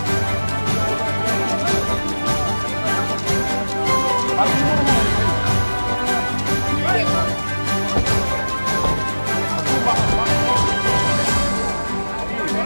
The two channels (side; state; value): both; inverted; correlation -1.00